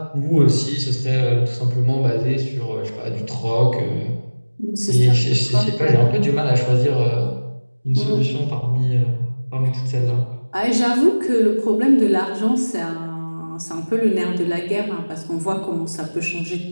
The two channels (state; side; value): inverted; both; correlation -1.00